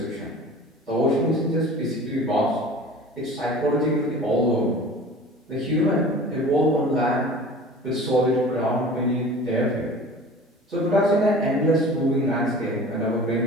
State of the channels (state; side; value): normal; both; correlation 0.41